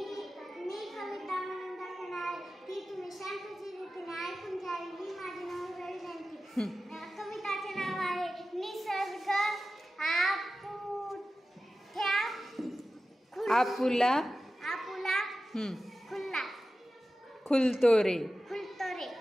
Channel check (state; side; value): normal; both; correlation 0.94